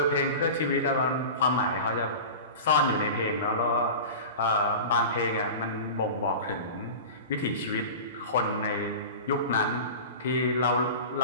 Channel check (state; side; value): inverted; both; correlation -0.32